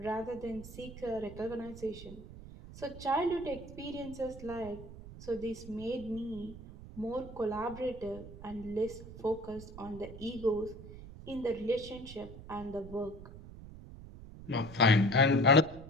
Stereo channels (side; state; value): right; noise; rumble, 14 dB below the sound